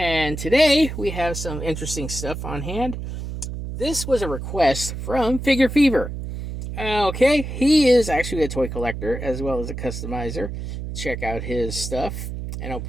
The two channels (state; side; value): noise; right; hum, 6 dB below the sound